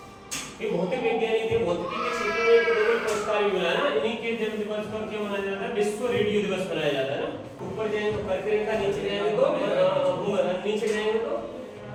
ये भौतिक वैज्ञानिक थे, भौतिकी के क्षेत्र में नोबेल पुरस्कार भी मिला ना, इन्हीं के जन्म दिवस पर क्या मनाया जाता है, विश्व रेडियो दिवस मनाया जाता है ना। ऊपर जाएंगे तो कर्क रेखा, नीचे जाएंगे तो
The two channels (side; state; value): both; identical; correlation 1.00